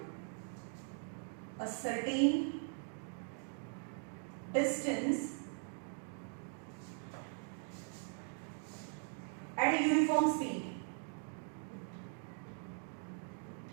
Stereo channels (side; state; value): left; silent; 51 dB below the other